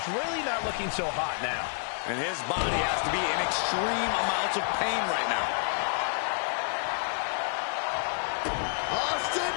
really not looking so hot now. And his body has to be in extreme amounts of pain right now. Austin!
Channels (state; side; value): silent; right; 55 dB below the other